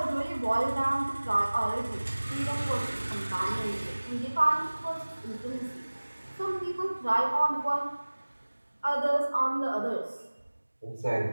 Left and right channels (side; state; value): both; inverted; correlation -1.00